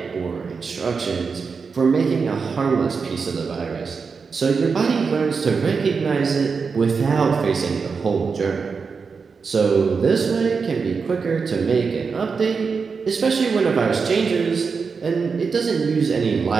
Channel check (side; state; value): left; quieter; 5.2 dB